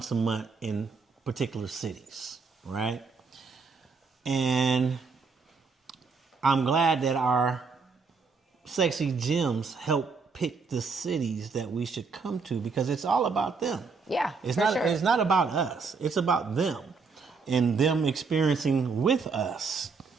a month in particular cities, right? And I'm glad that our sexy gems help pick the cities that we should come to because it's all about them. Yeah, it's for not. sure. It's not about us. It's about them and them experiencing with us.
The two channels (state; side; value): quieter; left; 4.8 dB